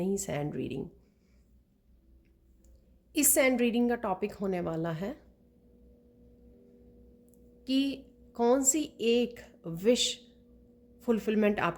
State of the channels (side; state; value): both; identical; correlation 1.00